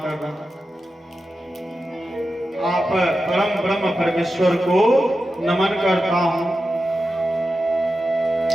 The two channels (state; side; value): normal; both; correlation 0.91